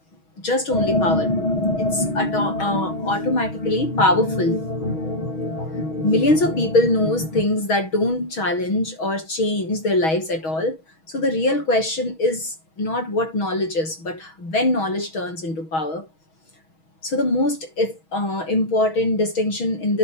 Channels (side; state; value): right; late; 6.3 ms